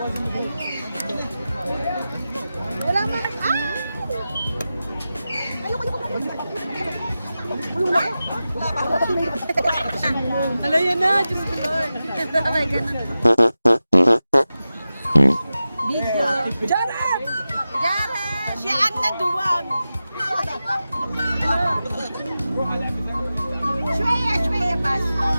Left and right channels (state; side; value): inverted; both; correlation -0.94